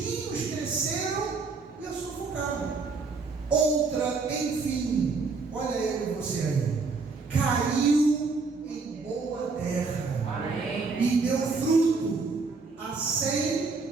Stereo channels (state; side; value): quieter; left; 4.3 dB